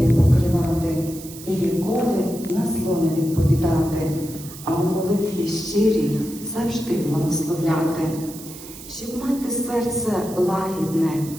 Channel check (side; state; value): right; noise; hiss, 15 dB below the sound